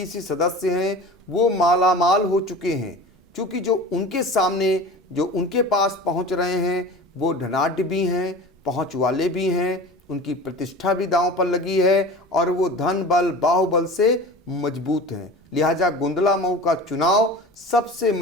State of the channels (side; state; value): both; normal; correlation 0.36